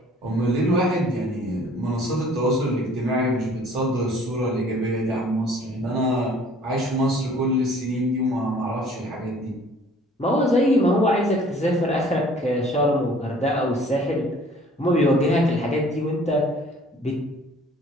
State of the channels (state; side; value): normal; both; correlation 0.54